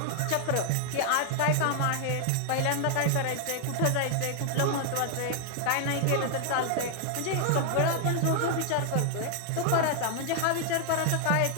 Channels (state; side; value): different; both; correlation 0.00